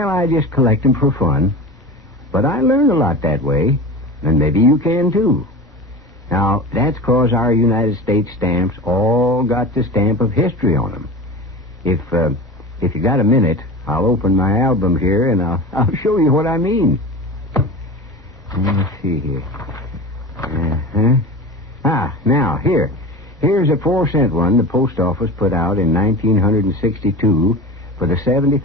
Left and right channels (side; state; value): both; normal; correlation 0.32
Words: I just collect them for fun. But I learn a lot that way, and maybe you can, too. Now, that's 'cause our United States stamps all got the stamp of history on them. If you got a minute, I'll open my album here, and I'll show you what I mean. Let's see here. Now, here's a 4-cent one the post office put out in 1962 for the